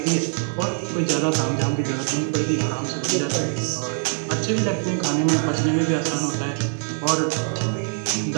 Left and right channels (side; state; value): left; silent; 63 dB below the other